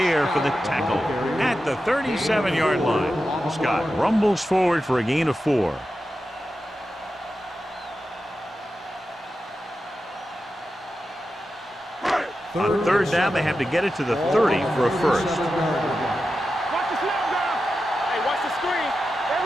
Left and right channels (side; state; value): both; normal; correlation 0.91